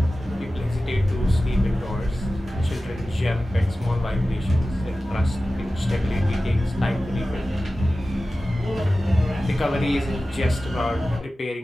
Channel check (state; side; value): normal; both; correlation 0.95